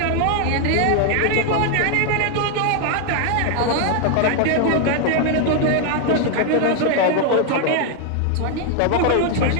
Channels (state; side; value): different; both; correlation 0.00